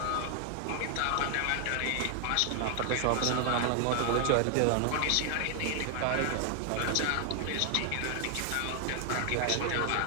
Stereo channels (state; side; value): different; both; correlation 0.00